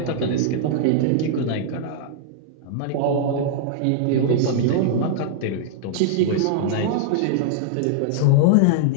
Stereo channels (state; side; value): different; both; correlation -0.01